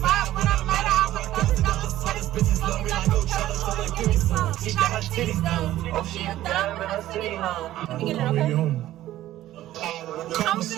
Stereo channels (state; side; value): quieter; left; 14.1 dB